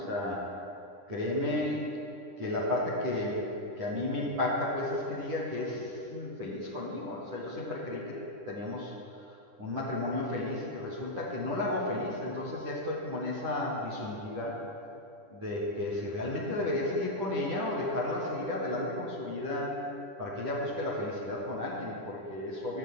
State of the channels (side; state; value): left; late; 10 ms